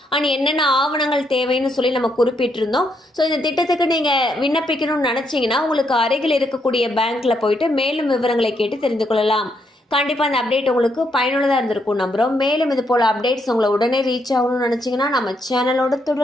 அண்ட் என்னென்ன ஆவணங்கள் தேவைன்னு சொல்லி நம்ம குறிப்பிட்டிருந்தோம். ஸோ இந்த திட்டத்துக்கு நீங்கள் விண்ணப்பிக்கணும்னு நினச்சிங்கன்னா உங்களுக்கு அருகில் இருக்கக்கூடிய பேங்க்கில் போயிட்டு மேலும் விவரங்களை கேட்டு தெரிந்து கொள்ளலாம். கண்டிப்பாக அந்த அப்டேட் உங்களுக்கு பயனுள்ளதாக இருந்திருக்கும் நம்புகிறோம். மேலும் இது போல் அப்டேட்ஸ் உங்களை உடனே ரீச் ஆகணும்னு நினச்சிங்கன்னா நம்ம சேனலோட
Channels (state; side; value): normal; both; correlation 0.76